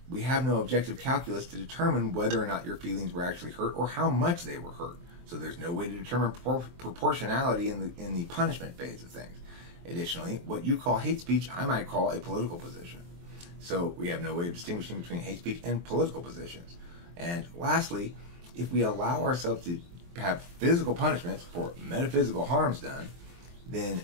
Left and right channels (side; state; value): left; late; 23 ms